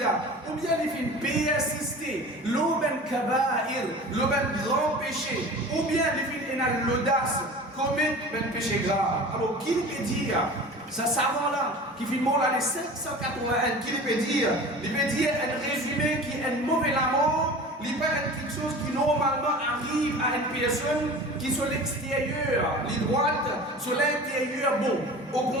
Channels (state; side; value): normal; both; correlation 0.38